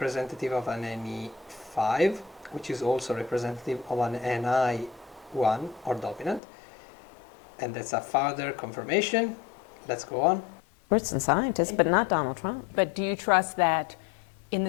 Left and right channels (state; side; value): drops out; right; at 6.4 s